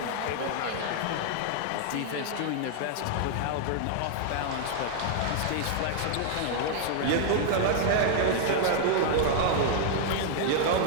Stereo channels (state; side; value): different; both; correlation 0.00